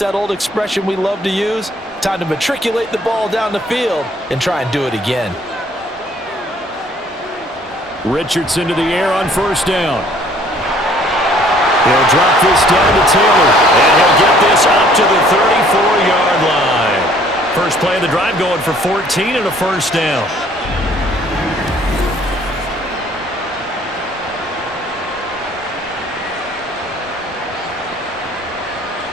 that old expression we love to use? Time to matriculate the ball down the field and try and do it again. Richardson to the air on first down. He'll drop this down to Taylor, and he'll get this up to the 34-yard line. First play of the drive going for 14 and a first down.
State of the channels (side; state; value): both; normal; correlation 0.59